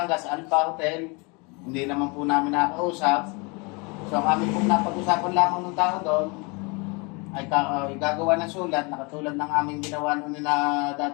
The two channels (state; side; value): quieter; right; 29.8 dB